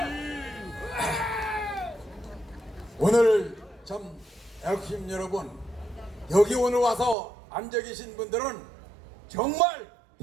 오늘 참 애국심 여러분, 여기 오늘 와서 앉아 계신 분들은 정말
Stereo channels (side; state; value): left; drops out; at 7.2 s